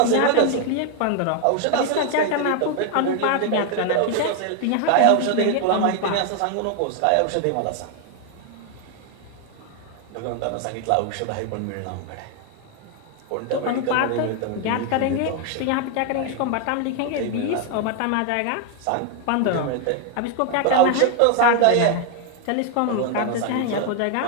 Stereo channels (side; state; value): both; different; correlation 0.01